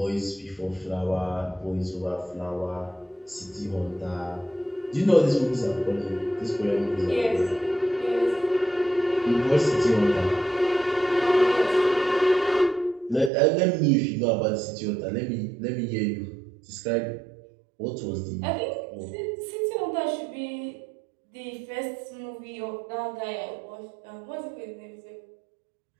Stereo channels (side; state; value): left; drops out; at 13.3 s